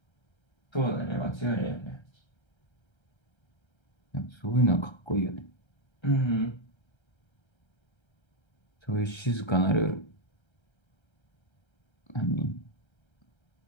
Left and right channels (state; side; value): late; right; 1.3 ms